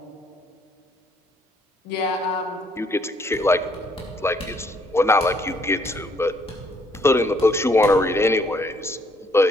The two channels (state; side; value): normal; both; correlation 0.67